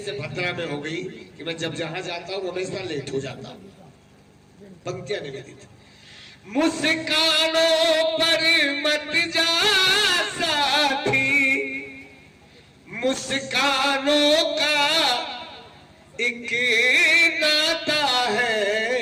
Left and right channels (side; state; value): both; identical; correlation 1.00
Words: भद्रा में हो गई कि मैं जब जहां जाता हूं हमेशा लेट हो जाता हूं। पंक्तियां निवेदित। मुस्कानों पर मत जा साथी, मुस्कानों का एक नाता है,